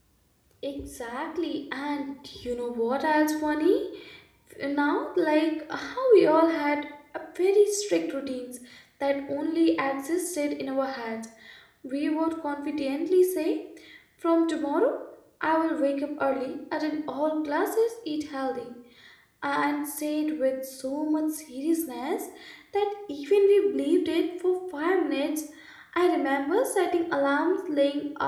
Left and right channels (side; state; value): both; identical; correlation 1.00